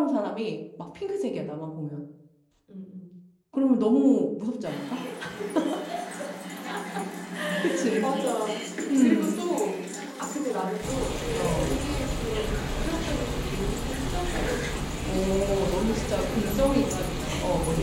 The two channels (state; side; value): identical; both; correlation 1.00